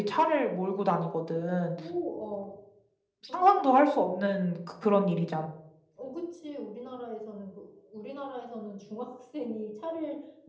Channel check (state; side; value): identical; both; correlation 1.00